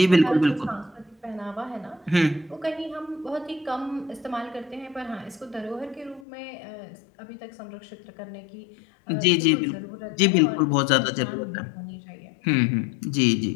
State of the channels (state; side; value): drops out; right; at 6.2 s